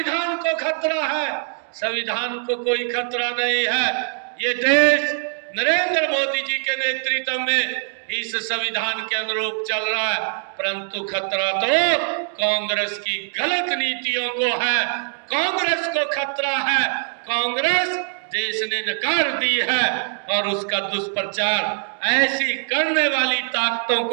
को खतरा है, संविधान को कोई खतरा नहीं है। ये देश नरेंद्र मोदी जी के नेतृत्व में इस संविधान के अनुरूप चल रहा है, परंतु खतरा तो कांग्रेस की गलत नीतियों को है, कांग्रेस को खतरा है। कांग्रेस देश ने नकार दी है और उसका दुष्प्रचार ऐसी करने वाली ताकतों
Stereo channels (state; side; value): silent; left; 64 dB below the other